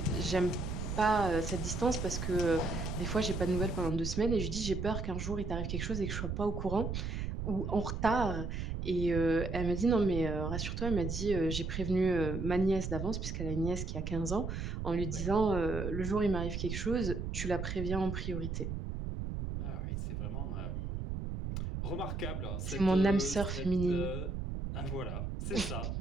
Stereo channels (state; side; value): noise; right; rumble, 3 dB below the sound